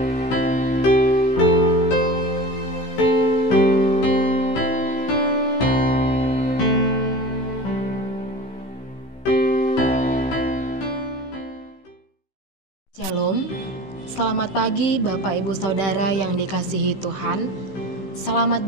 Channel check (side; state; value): right; late; 16 ms